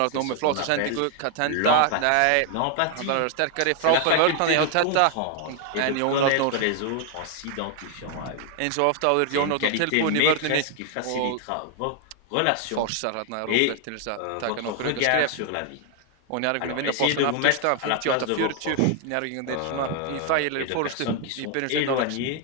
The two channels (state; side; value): different; both; correlation 0.00